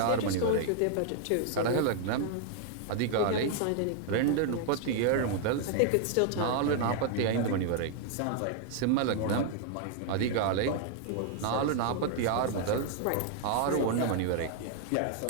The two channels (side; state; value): both; different; correlation 0.00